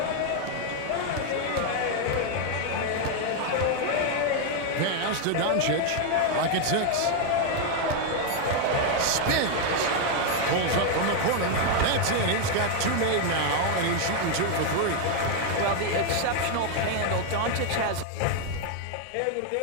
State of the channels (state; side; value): different; both; correlation 0.01